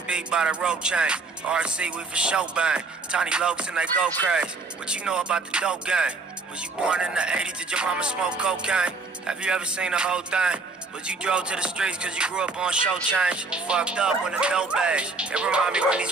B by the rope chain. RC, we for show bang. Tiny lokes and they go crazy. What you know about the dope game? Was you born in the 80s? Did your mama smoke cocaine? Have you ever seen the whole thing? But you drove to the streets cause you grew up on show change. Fucked up when the dope age. It remind me when these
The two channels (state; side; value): quieter; left; 3.9 dB